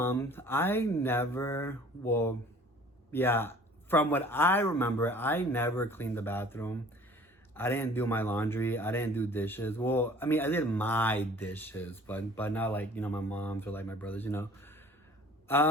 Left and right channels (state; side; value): normal; both; correlation 0.50